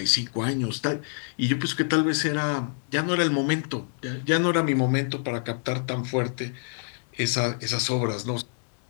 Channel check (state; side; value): silent; right; digital silence